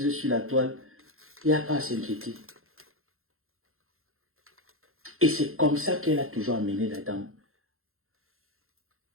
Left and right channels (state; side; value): late; left; 0.61 ms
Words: sur la toile, il n'y a pas à s'inquiéter. Et c'est comme ça qu'elle a toujours amené la dame.